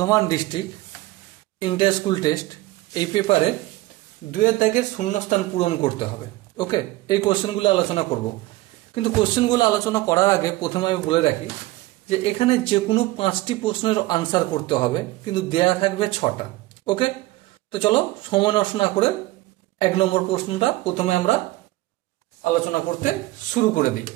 district inter school test এই পেপারে 2 দাগের শূন্যস্থান পূরণ করতে হবে। ওকে, এই কোশ্চেনগুলো আলোচনা করব, কিন্তু কোশ্চেনগুলো আলোচনা করার আগে প্রথমে আমি বলে রাখি যে এখানে যে কোনো 5টি প্রশ্নের আনসার করতে হবে, কিন্তু দেয়া থাকবে 6টা। ওকে, তো চলো সময় নষ্ট না করে 1 নম্বর প্রশ্নটা প্রথমে আমরা আলোচনা করতে শুরু করে দিই।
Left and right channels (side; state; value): left; quieter; 18.5 dB